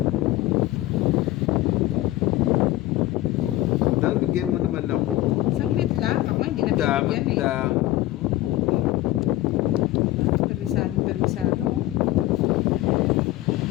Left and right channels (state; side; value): quieter; right; 16.3 dB